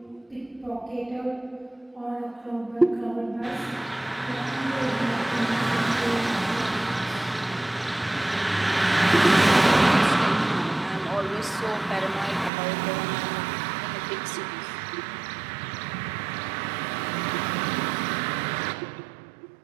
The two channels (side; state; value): left; drops out; at 12.5 s